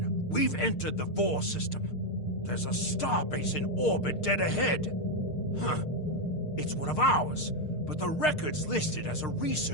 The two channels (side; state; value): right; late; 6.6 ms